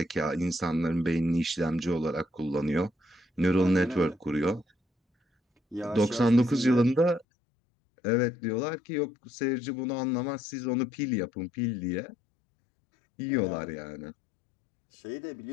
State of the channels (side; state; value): right; drops out; at 7.2 s